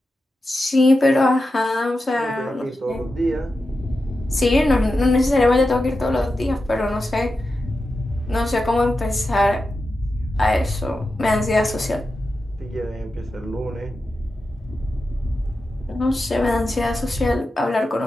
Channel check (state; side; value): normal; both; correlation 0.91